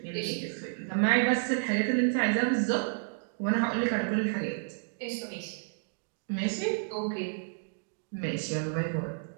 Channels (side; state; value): left; silent; digital silence